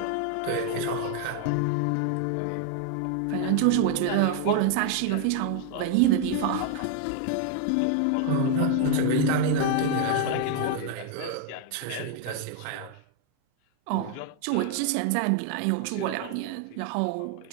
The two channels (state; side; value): different; both; correlation 0.00